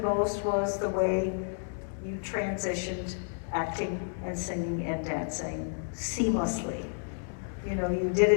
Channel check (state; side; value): silent; right; digital silence